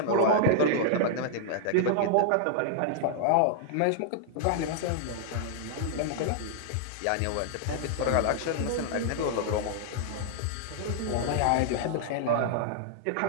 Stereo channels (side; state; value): both; different; correlation -0.01